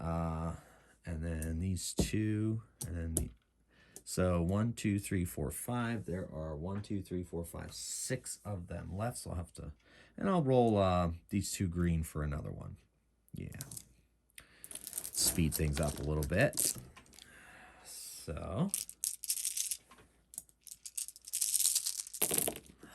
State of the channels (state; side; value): identical; both; correlation 1.00